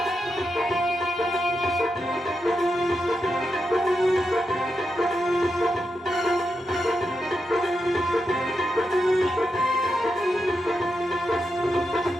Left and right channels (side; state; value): both; normal; correlation 0.86